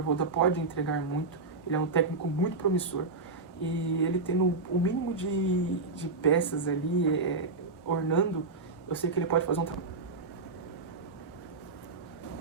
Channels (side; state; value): left; quieter; 3.8 dB